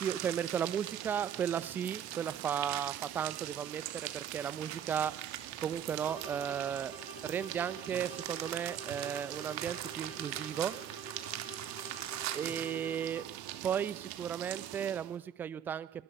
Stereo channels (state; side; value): quieter; left; 8.9 dB